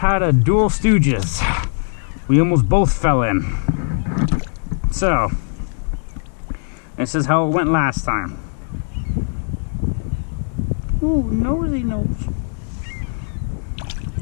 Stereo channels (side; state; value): right; silent; digital silence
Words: a dual stooges. We almost both fell in. So, this is how it went last time. Ooh, nosy nose.